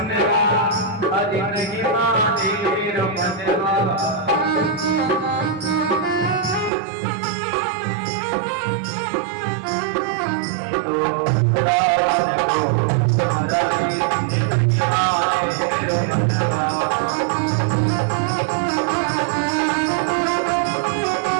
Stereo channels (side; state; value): left; drops out; at 6.7 s